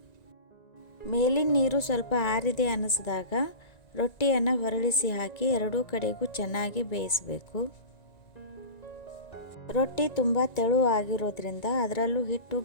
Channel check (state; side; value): late; right; 1.9 ms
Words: ಮೇಲಿನ ನೀರು ಸ್ವಲ್ಪ ಆರಿದೆ ಅನ್ನಿಸಿದಾಗ ರೊಟ್ಟಿಯನ್ನು ಹೊರಳಿಸಿ ಹಾಕಿ ಎರಡೂ ಕಡೆಗೂ ಚೆನ್ನಾಗಿ ಬೇಯಿಸಬೇಕು. ರೊಟ್ಟಿ ತುಂಬ ತೆಳು ಆಗಿರೋದ್ರಿಂದ ಅದರಲ್ಲೂ ಹಿಟ್ಟು